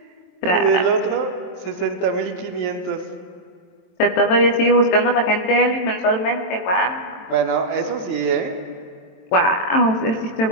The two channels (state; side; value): late; right; 22 ms